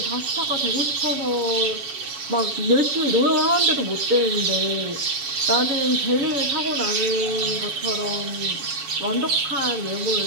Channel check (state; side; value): late; left; 7.1 ms